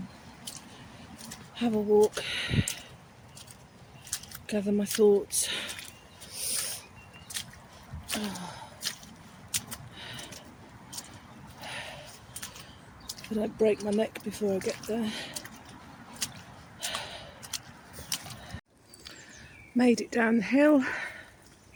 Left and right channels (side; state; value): both; identical; correlation 1.00